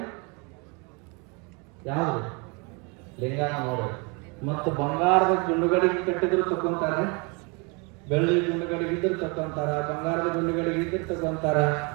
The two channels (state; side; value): quieter; left; 31.6 dB